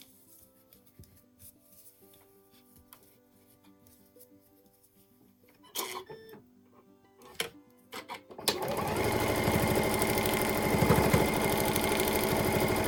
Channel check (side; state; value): both; identical; correlation 1.00